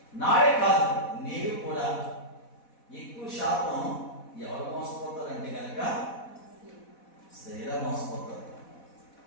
నాడే కాదు, నీవు కూడా ఎక్కువ శాతం ఎవరు మోసపోతారంటే కనుక స్త్రీలా మోసపోతారు.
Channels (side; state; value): right; late; 4.1 ms